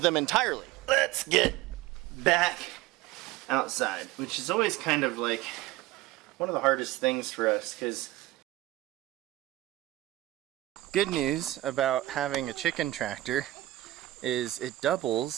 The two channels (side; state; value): left; quieter; 16.4 dB